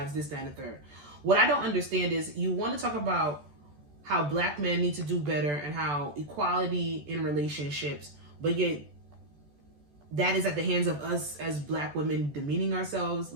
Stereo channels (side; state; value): left; late; 14 ms